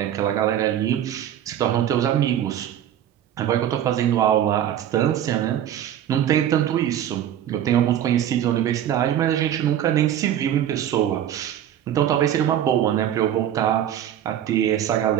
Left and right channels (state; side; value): quieter; left; 10.7 dB